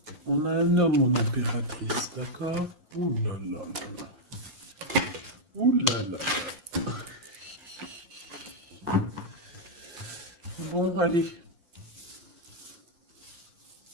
On a un homme, mon impératrice, d'accord? Ouh là là là là. Ouh là là. Bon, allez.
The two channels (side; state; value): left; late; 5.7 ms